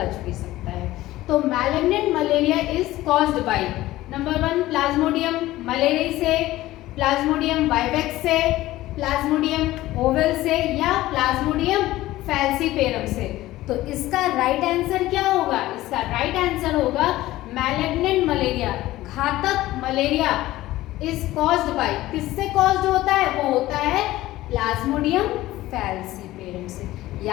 भी सकता है। तो malignant malaria is caused by number 1 Plasmodium malaria से, प्लाज्मोडियम वाइवेक्स से, प्लाज्मोडियम ओवल से या प्लाज्मोडियम फैल्सीपेरम से। तो इसका राइट आंसर क्या होगा? इसका राइट आंसर होगा मैलिग्नेंट मलेरिया, घातक मलेरिया इज कॉज्ड बाय, किससे कॉज्ड होता है? वो होता है प्लाज्मोडियम फैल्सीपेरम से।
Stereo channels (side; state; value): right; quieter; 16.4 dB